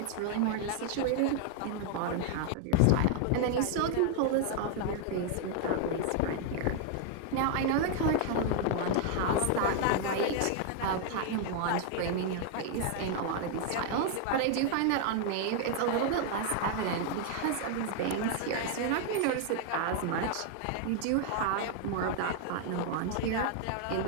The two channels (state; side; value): different; both; correlation 0.00